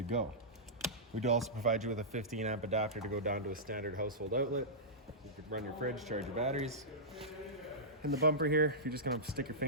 go. We do also provide you with a 15 amp adapter to go down to a standard household outlet. You could run your fridge, charge your batteries. In the bumper here, you're just going to stick your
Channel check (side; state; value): both; normal; correlation -0.15